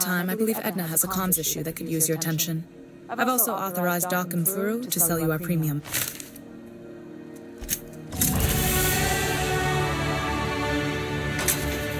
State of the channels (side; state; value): both; identical; correlation 1.00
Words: I believe Edna has a comms issue that could use your attention. I've also authorized Doc and Furu to sell you our premium.